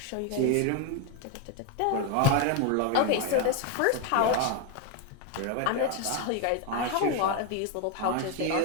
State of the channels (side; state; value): both; different; correlation 0.01